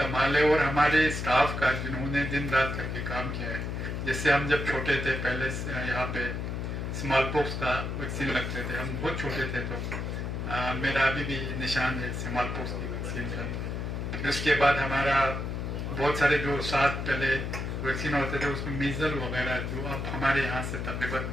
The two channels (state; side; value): noise; left; hum, 3 dB below the sound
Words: ہے اور ہمارے سٹاف کا جنہوں نے دن رات کر کے کام کیا ہے. جیسے ہم جب چھوٹے تھے پہلے یہاں پہ اسمال پوکس کا ویکسین لگتے تھے، ہم بہت چھوٹے تھے تو میرا ابھی بھی نشان ہے اسمال پوکس کی ویکسین کا. پھر اس کے بعد ہمارا بہت سارے جو ساتھ پہلے ویکسین ہوتے تھے اس میں میزل وغیرہ جو اب ہمارے یہاں سے تقریباً